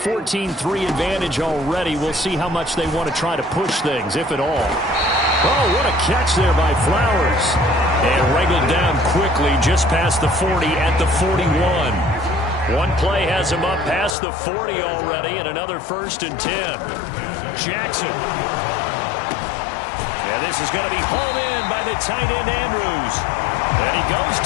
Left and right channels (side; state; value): right; drops out; at 14.2 s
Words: advantage already, we'll see how much they want to try to push things, if at all. Oh, what a catch there by Flowers. And wrangled down quickly just past the 40 at the 41. One play has him up past the 40 already, and another 1st and 10. Jackson. And this is going to be hauled in by the tight end Andrews. And he goes